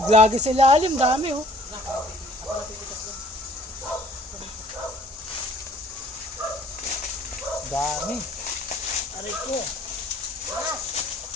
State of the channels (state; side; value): normal; both; correlation 0.56